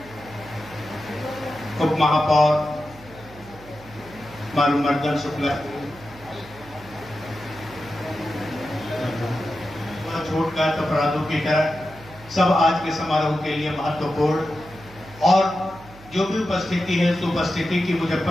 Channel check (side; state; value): right; noise; hum, 20 dB below the sound